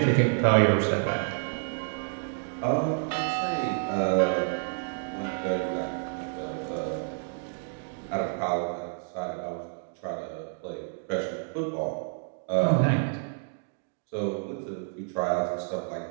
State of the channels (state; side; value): silent; left; 58 dB below the other